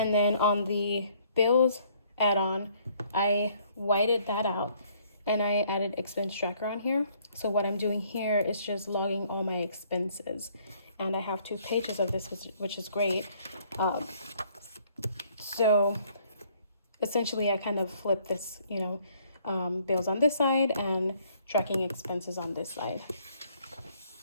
then on the bills add-on, I whited that out and I added expense tracker on here. So what I'm doing here is just logging all my expenses, and I have 2 pages of this, which is great. So essentially I kind of flip this, you know, bills on this side and tracking expenses on this side.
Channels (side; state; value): both; inverted; correlation -0.63